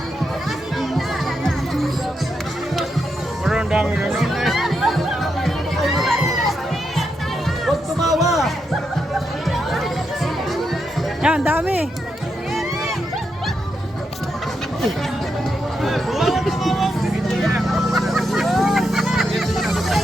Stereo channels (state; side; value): normal; both; correlation 0.83